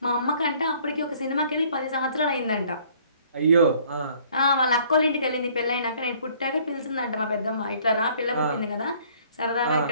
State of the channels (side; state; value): both; inverted; correlation -0.58